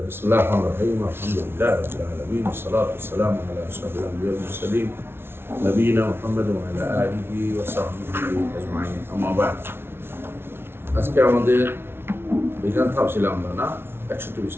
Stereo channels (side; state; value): left; late; 0.12 ms